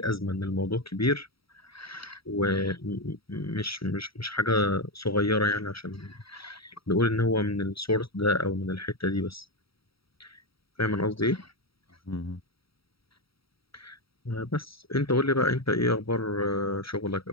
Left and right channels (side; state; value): right; late; 0.75 ms